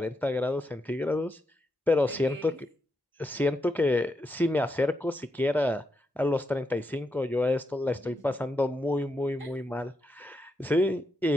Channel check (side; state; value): both; normal; correlation 0.83